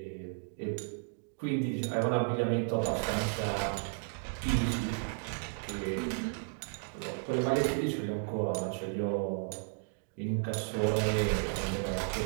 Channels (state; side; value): silent; left; 55 dB below the other